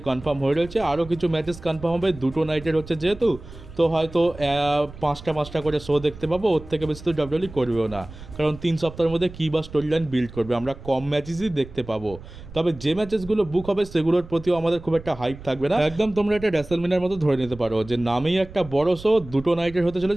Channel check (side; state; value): right; noise; rumble, 16 dB below the sound